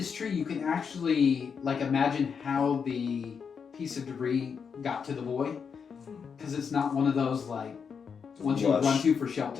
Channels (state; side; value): quieter; right; 6.3 dB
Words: tree, you can actually like imagine how the piece of debris got to the boy, because it's not one of those like ones you Lush. run to for